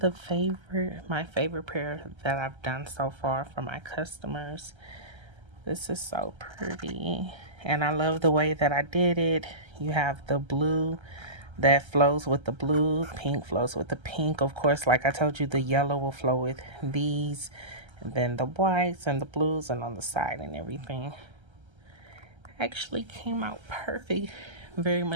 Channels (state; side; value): late; left; 1.3 ms